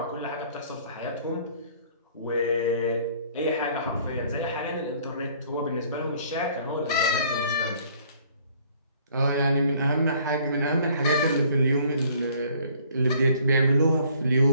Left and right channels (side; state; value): both; inverted; correlation -0.58